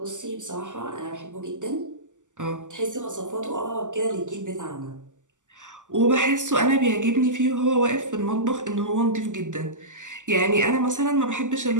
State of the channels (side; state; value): left; late; 0.87 ms